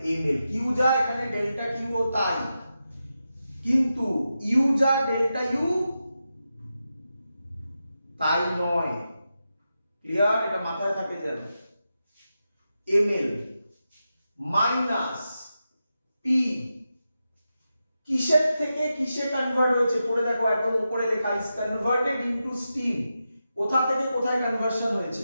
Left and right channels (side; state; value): both; inverted; correlation -0.89